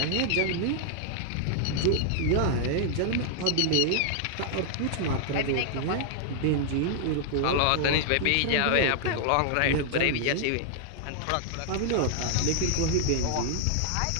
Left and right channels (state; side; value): different; both; correlation 0.00